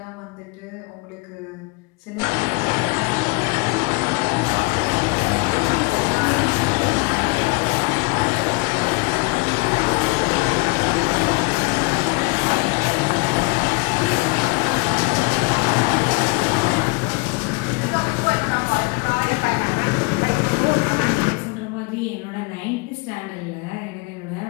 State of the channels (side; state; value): right; quieter; 27.9 dB